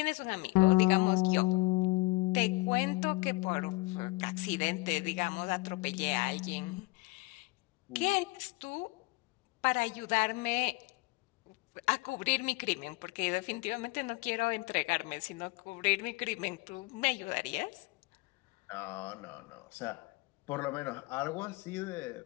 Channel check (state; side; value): quieter; right; 23.3 dB